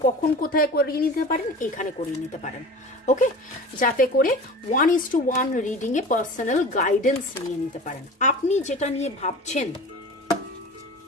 কখন কোথায় করিয়ে নিতে পারেন, এখানে করিয়ে নিতে পারেন। ওকে, যাতে করে 1:1 রিডিংয়ে পার্সোনাল গাইডেন্স নিয়ে নিতে পারেন। আপনি যেটা নিয়ে ভাবছেন,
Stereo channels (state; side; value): normal; both; correlation 0.37